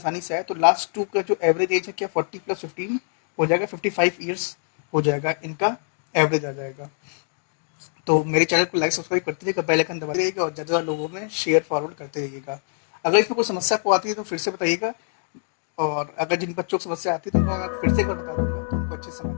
से आए। तो लास्ट टू का जो एवरेज एज है क्या 40 + 15 हो जाएगा, 55 ईयर्स हो जाएगा, इनका एवरेज आ जाएगा। तो मेरे चैनल को लाइक सब्सक्राइब करते रहिएगा, बेल आइकन दबाते रहिएगा और ज़्यादा लोगों में शेयर फॉरवर्ड करते रहिएगा। अगर इसमें कोई समस्या आपको आती है तो फिर से बताइएगा, और अगर जिन बच्चों को समस्या आती है तो उनको मैं फिर से एक बार बता दूंगा तो उनको अच्छे से समझ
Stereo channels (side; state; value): right; silent; digital silence